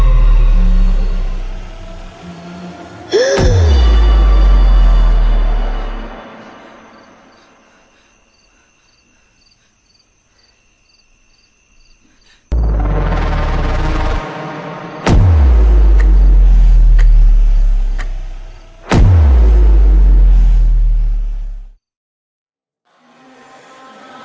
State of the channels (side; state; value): both; identical; correlation 1.00